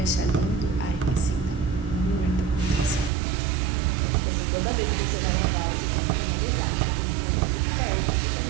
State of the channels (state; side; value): drops out; left; at 3.1 s